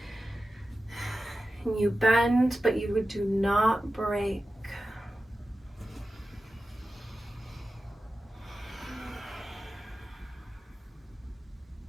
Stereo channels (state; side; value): normal; both; correlation 0.93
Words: and you bend, but you do not break.